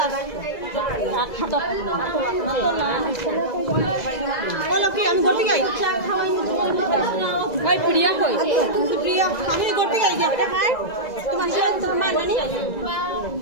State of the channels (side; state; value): right; late; 2.0 ms